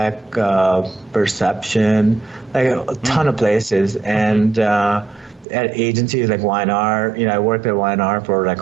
Perception, like a ton of places. And at agencies like Y&R, I worked at Y&R for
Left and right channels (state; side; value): drops out; left; at 5.5 s